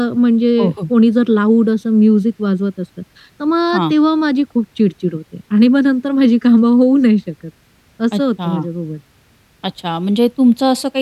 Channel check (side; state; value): both; identical; correlation 1.00